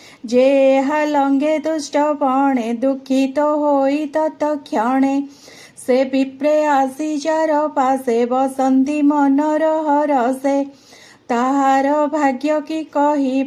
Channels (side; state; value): both; identical; correlation 1.00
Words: जे लंगे दुष्ट बणे दुखित होई तत्क्षणे से विप्रे आसी जार पासे बसंती मनर हरसे ताहार भाग्य की